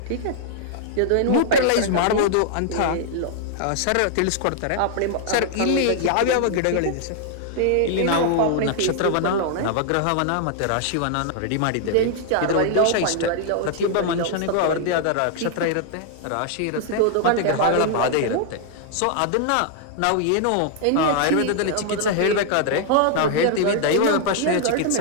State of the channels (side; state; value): both; different; correlation -0.01